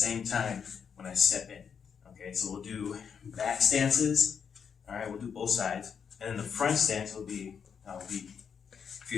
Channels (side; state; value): right; quieter; 6.9 dB